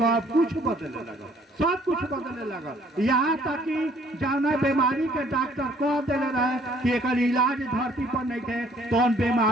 कुछ बदलने लगा, सब कुछ बदलने लगा। यहाँ तक कि जाना बीमारी के डॉक्टर कह दिले रहे कि एक इलाज धरती पर नहीं थे तो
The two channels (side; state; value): both; normal; correlation 0.61